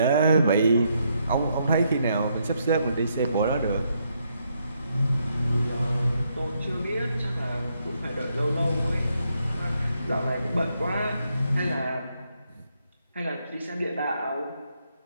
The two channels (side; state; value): both; inverted; correlation -0.76